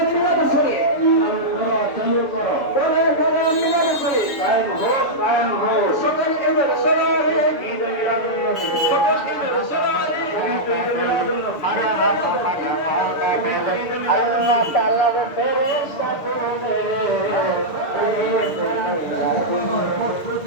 মিলাদ শরীফ চালু করো, করে করে মিলাদ শরীফ কায়েম হোক, কায়েম হোক। সকল ঈদের সলারে, ঈদ মিলাদুন নবী, সকল ঈদের সলারে, ঈদ মিলাদুন নবী। আল্লাহ তাআলার ফেরেশতা তুমি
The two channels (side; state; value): right; late; 6.8 ms